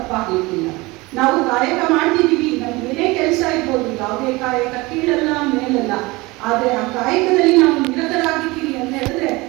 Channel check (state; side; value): quieter; left; 22.7 dB